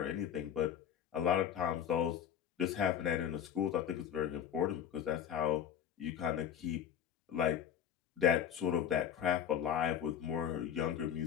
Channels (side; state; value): right; quieter; 9.3 dB